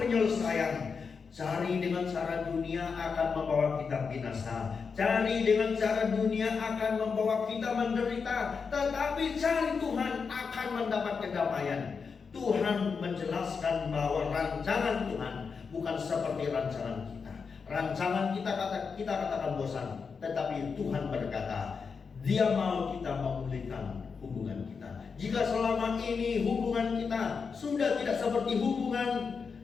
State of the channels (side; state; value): right; quieter; 5.5 dB